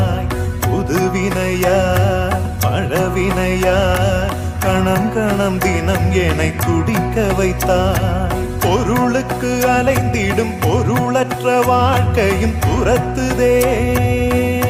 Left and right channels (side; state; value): both; identical; correlation 1.00